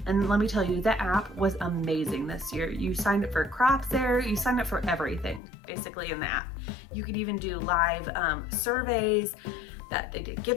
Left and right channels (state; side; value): drops out; right; at 5.4 s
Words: And let me tell you, the app was amazing this year. You signed up for crops there, you signed up for everything basically in the app. You could even do live surveys, that they did